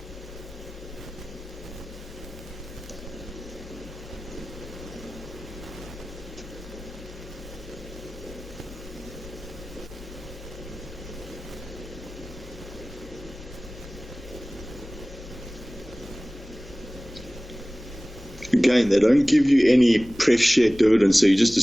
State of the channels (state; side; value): normal; both; correlation 0.98